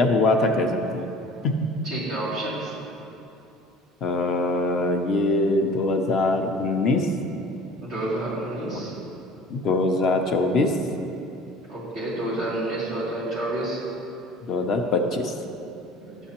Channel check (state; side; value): normal; both; correlation 0.45